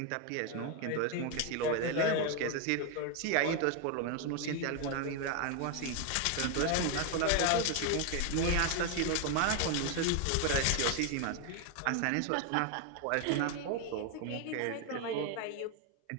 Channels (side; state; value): both; different; correlation 0.01